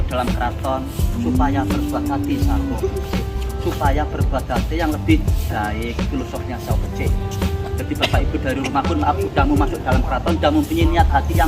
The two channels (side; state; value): both; identical; correlation 1.00